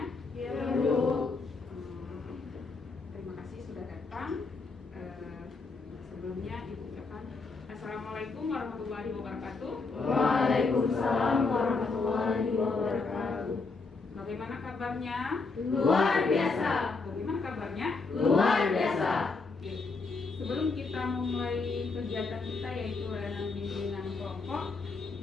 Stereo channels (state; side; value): quieter; right; 4.1 dB